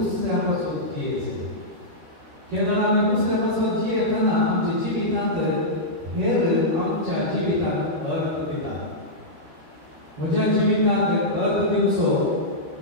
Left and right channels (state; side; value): late; left; 13 ms